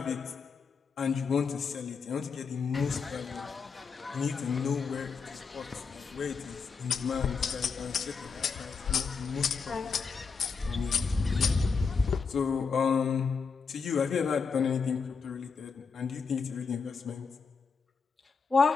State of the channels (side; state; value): right; quieter; 5.3 dB